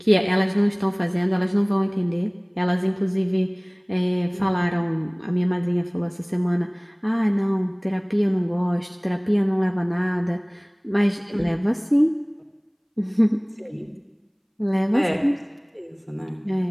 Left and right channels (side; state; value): both; identical; correlation 1.00